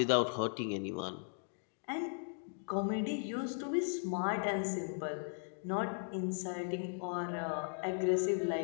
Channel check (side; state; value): right; silent; digital silence